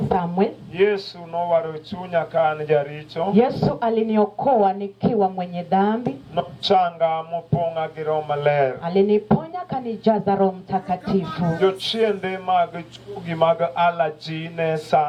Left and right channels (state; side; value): identical; both; correlation 1.00